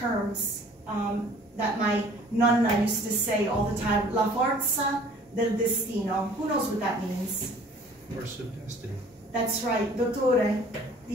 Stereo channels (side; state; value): both; normal; correlation 0.51